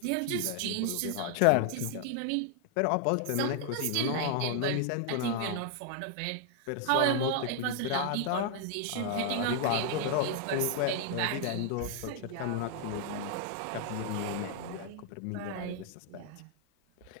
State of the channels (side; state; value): both; different; correlation 0.00